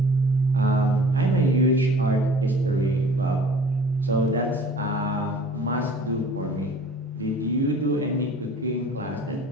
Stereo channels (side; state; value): both; normal; correlation 0.47